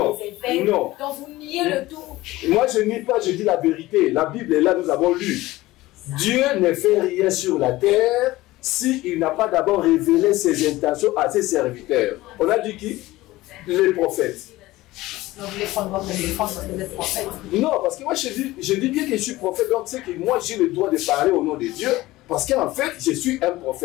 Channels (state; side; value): quieter; right; 18.1 dB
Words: les évêques. Non. Donc vous niez le tout. Moi je nie pas, je dis la vérité. La Bible est là, nous avons lu. Dieu ne fait rien sur la terre s'il n'a pas d'abord révélé ses intentions à ses serviteurs. On a dit qui? Les prophètes. Donc vous voulez prendre votre défense parce que vous êtes prophète? Non, parce que moi je dis bien que je suis prophète, donc c'est que moi j'ai le droit de parler au nom de Dieu, parce qu'en fait je suis un